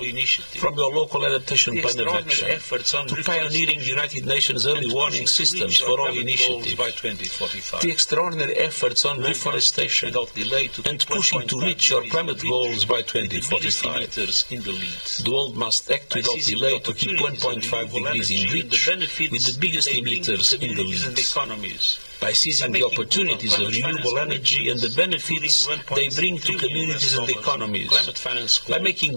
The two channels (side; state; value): both; inverted; correlation -1.00